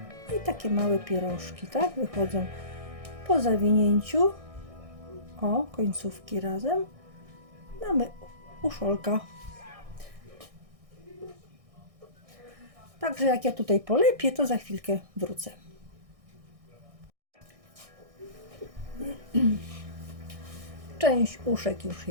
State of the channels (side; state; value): left; late; 1.6 ms